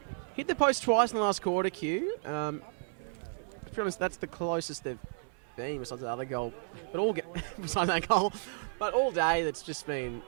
Hit the post twice in the last quarter, Q. To be honest, that's the closest they've been besides the other goal. But besides that goal. But all day, that's just been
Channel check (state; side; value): silent; left; 56 dB below the other